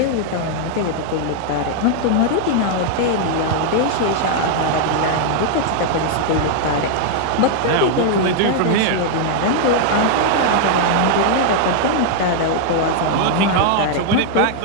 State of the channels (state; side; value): different; both; correlation -0.01